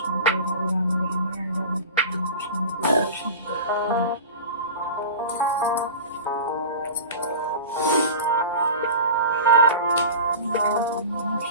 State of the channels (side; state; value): both; inverted; correlation -0.33